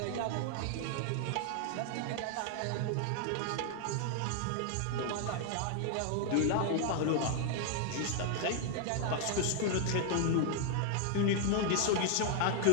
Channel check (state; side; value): different; both; correlation 0.00